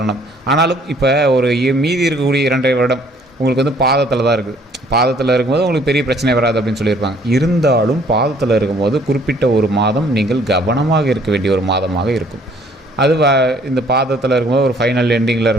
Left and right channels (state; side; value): normal; both; correlation 0.60